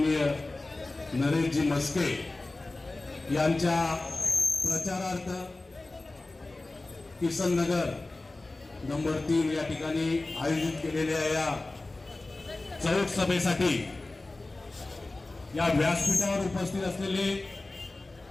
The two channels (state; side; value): quieter; right; 3.1 dB